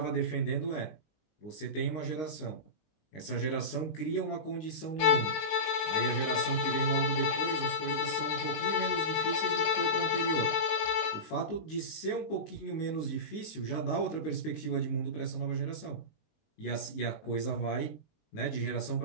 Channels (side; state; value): right; late; 19 ms